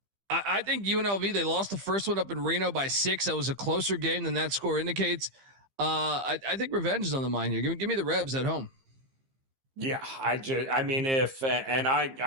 think UNLV, they lost the first one up in Reno by 6. That was a closer game than that score indicates. I think revenge is on the mind here. Give me the Rebs at home. Yeah, I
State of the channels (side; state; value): left; late; 15 ms